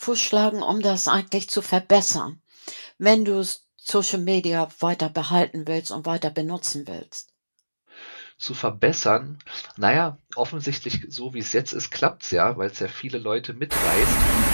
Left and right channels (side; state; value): both; inverted; correlation -1.00